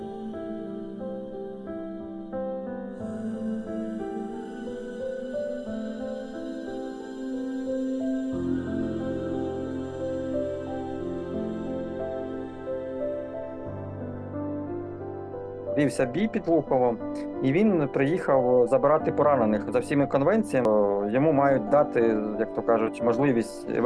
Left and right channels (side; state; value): both; identical; correlation 1.00